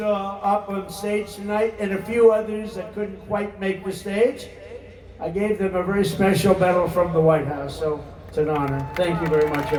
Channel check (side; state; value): both; identical; correlation 1.00